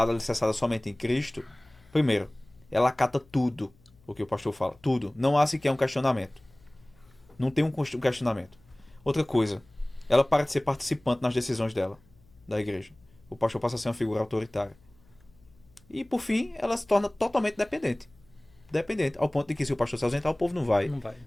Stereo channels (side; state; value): left; noise; hum, 30 dB below the sound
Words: alicerçada somente em Cristo, primeiro, ela acata tudo o que o pastor fala, tudo. Não há sequer um questionamento. Não tem um questionamento. Outra coisa, ela para de ser participante nas decisões dela, da igreja. O pastor passa a ser uma figura autoritária. E, por fim, ela se torna totalmente dependente. Dependente, ao ponto de que se o pastor se ausentar, o povo não vai.